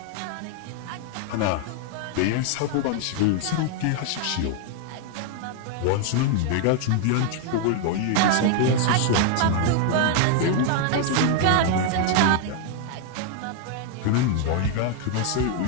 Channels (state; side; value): different; both; correlation 0.00